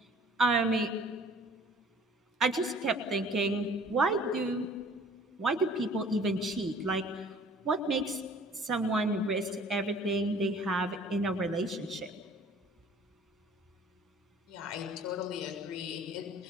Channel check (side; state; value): both; normal; correlation 0.51